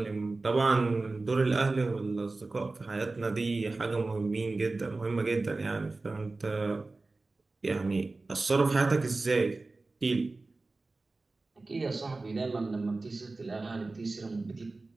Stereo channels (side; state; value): left; quieter; 3.4 dB